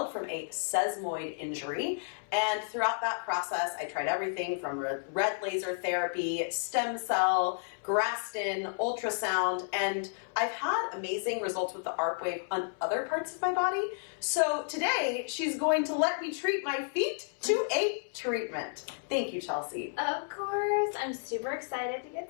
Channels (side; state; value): right; silent; 57 dB below the other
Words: from a sesamoid injury, and throughout that process, I tried everything from red laser therapy, stem cell, Graston, ultrasound, and I've had amazing results with the ARP wave on other parts of my body. So today, she's going to let me treat my feet to a treatment. Thank you, Chelsea. Of course, I'm super excited to